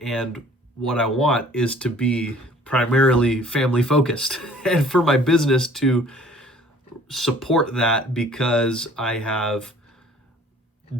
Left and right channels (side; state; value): both; normal; correlation 0.53